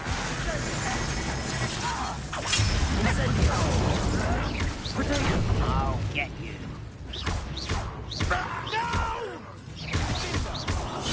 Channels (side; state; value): both; identical; correlation 1.00